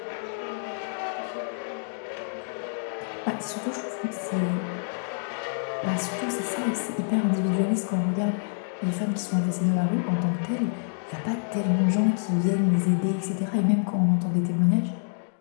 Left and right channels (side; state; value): right; silent; digital silence